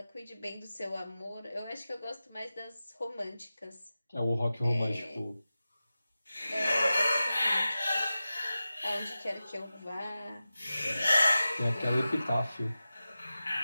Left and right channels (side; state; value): both; inverted; correlation -0.94